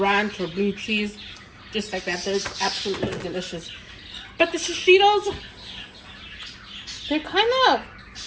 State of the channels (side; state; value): both; identical; correlation 1.00